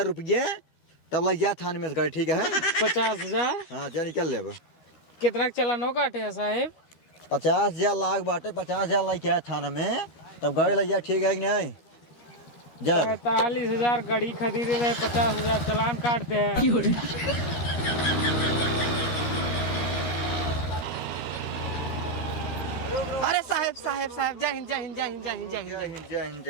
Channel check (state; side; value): late; right; 13 ms